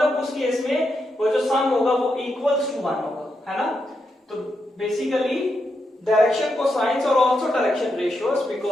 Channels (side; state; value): both; normal; correlation 0.84